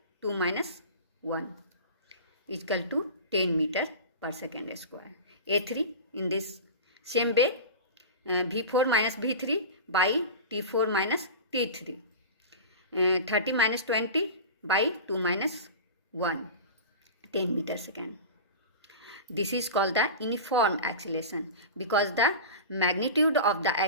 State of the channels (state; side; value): inverted; both; correlation -0.30